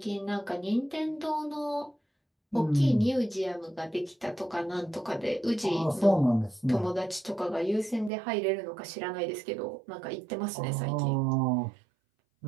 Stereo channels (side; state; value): left; drops out; at 8.1 s